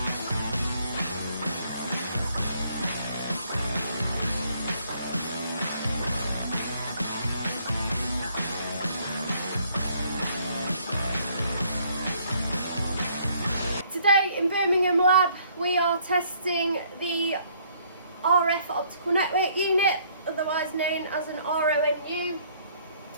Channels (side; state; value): both; inverted; correlation -0.64